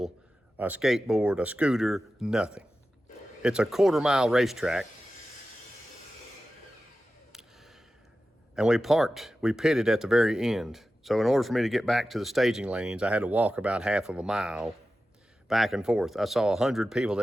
a skateboard, a scooter, nothing. It's a quarter-mile racetrack, and we pitted at the very end. So in order for me to get back to the staging lanes, I had to walk about half of a mile back and forth. I saw 100 people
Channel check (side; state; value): both; normal; correlation 0.94